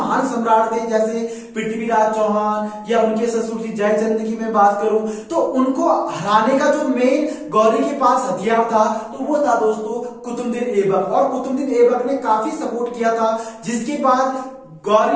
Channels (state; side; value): identical; both; correlation 1.00